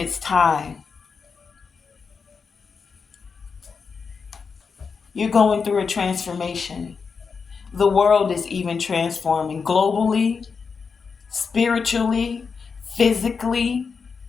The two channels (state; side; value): quieter; right; 5.4 dB